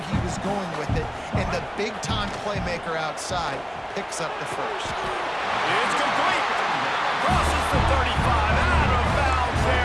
was going with it, and the big-time playmaker outside picks up the first. It's complete. Crosses the 35. Out of bounds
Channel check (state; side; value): identical; both; correlation 1.00